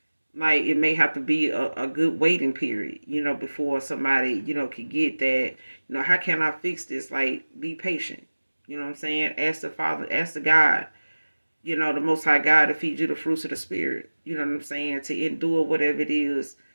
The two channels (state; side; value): inverted; both; correlation -1.00